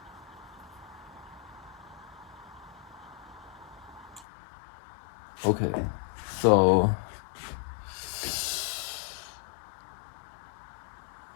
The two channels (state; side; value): drops out; right; at 4.2 s